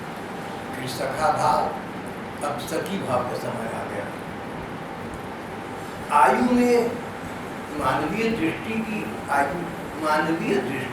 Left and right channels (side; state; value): both; identical; correlation 1.00